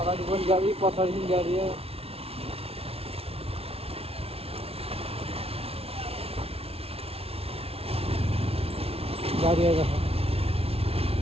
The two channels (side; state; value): left; late; 0.29 ms